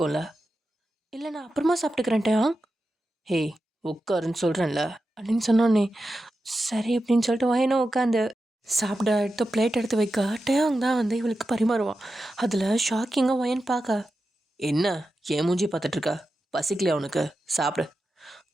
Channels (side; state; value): both; normal; correlation 0.91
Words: இல்லை நான் அப்புறமா சாப்பிட்டுக்கிறேன் டயாங். ஹேய் உட்காருன்னு சொல்கிறேன்ல அப்படின்னு சொன்னோன்னே சரி அப்படின்னு சொல்லிட்டு வயனும் உட்காந்து சாப்பிட எடுத்து பிளேட் எடுத்து வைக்க டயாங் தான் வந்து இவளுக்கு பரிமாறுவான். அதில் ஷாக்கிங்காக வயன் பார்க்க, என்ன ஏன் மூஞ்சி பார்த்துட்ருக்கா, பசிக்கலையா உனக்கு, சாப்பிடு.